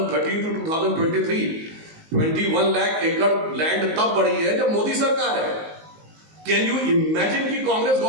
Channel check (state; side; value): late; left; 19 ms